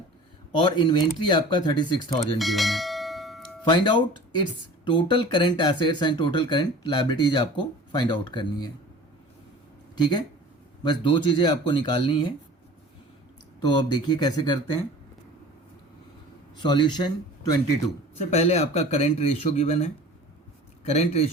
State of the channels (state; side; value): normal; both; correlation 0.42